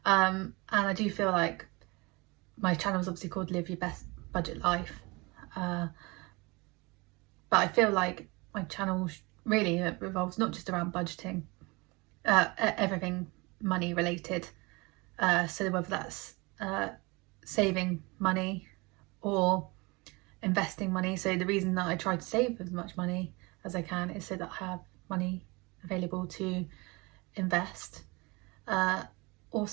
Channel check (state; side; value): quieter; left; 25.8 dB